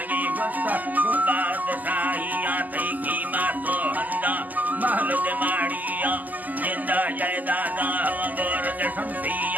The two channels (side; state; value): left; late; 0.082 ms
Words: वस्ता बादशाहिया तई कीमत तो हंदा महल दे माड़िया जिंदा जायदादा गोर दे